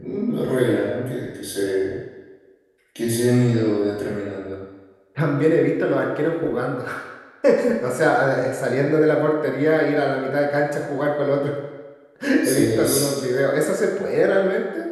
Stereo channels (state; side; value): identical; both; correlation 1.00